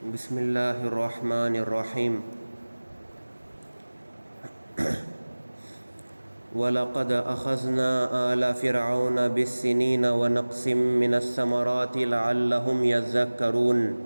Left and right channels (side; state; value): both; inverted; correlation -1.00